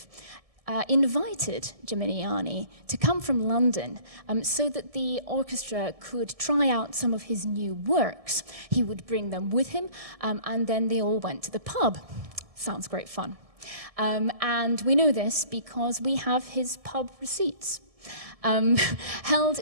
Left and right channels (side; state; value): left; late; 1.7 ms